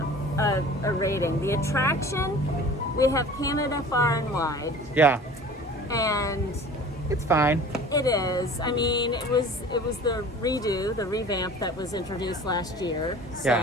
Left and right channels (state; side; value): normal; both; correlation 0.43